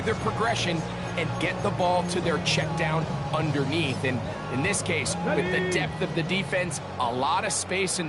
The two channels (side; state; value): both; identical; correlation 1.00